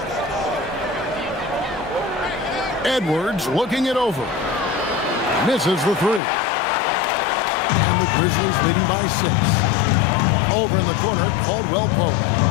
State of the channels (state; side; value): drops out; right; at 6.2 s